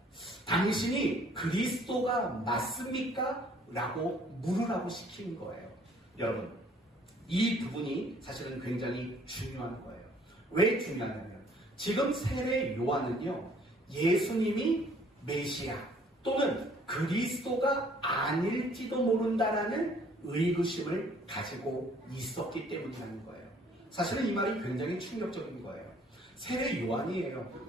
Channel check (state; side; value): normal; both; correlation 0.59